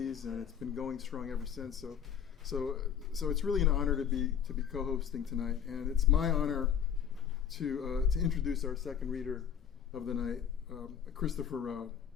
and it's been going strong ever since. So it's really an honor to be co-hosting tonight, and it's my honor to introduce our second reader of the night, Christopher Rowe.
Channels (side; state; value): right; quieter; 8.5 dB